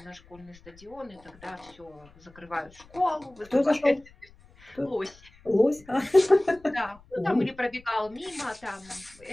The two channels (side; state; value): left; noise; rumble, 25 dB below the sound